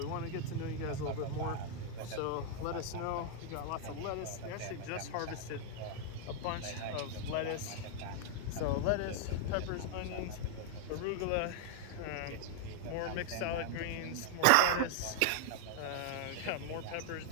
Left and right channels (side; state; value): both; different; correlation 0.00